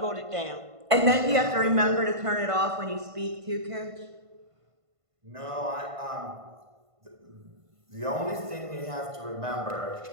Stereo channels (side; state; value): left; late; 1.5 ms